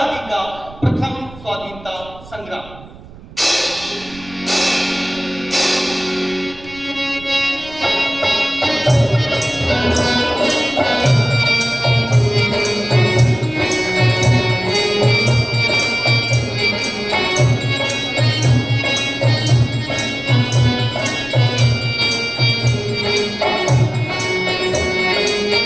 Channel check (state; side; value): noise; right; rumble, 19 dB below the sound